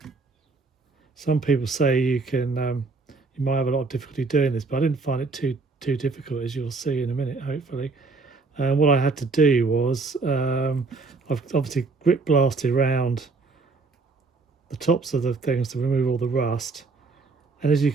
Some people say you might have a lot of difficulty doing this, but I didn't find it too difficult, as you'll see in a minute, hopefully. What I had to do was I've obviously grip blasted around the tops of the things to remove all the rust, and as you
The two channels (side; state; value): left; quieter; 4.0 dB